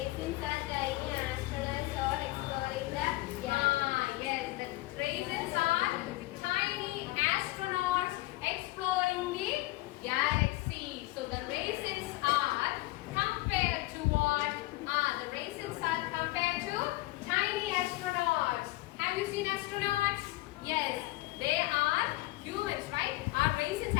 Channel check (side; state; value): right; quieter; 19.8 dB